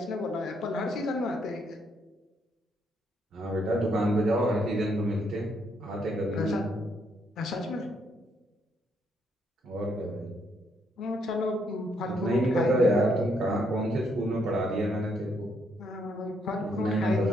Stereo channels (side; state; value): both; normal; correlation 0.73